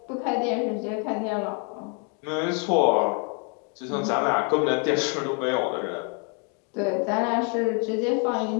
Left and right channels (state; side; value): quieter; right; 38.0 dB